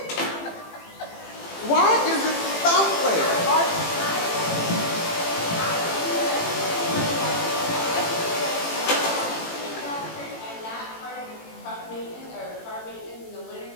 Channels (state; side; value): late; right; 18 ms